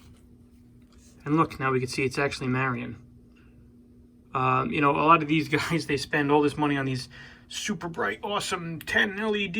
and look, now we can see it's actually Marion. A lot of these guys, they spend all this money on these super bright, awesome 10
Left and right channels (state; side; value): identical; both; correlation 1.00